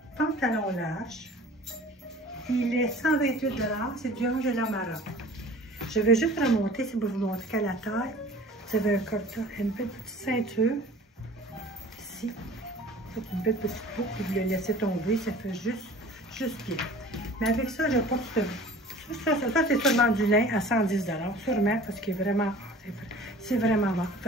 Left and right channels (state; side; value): normal; both; correlation 0.45